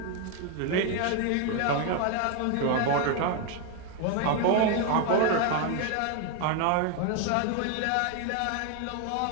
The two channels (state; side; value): different; both; correlation 0.01